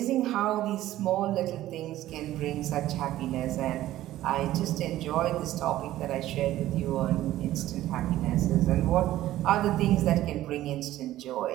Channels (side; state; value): left; quieter; 14.4 dB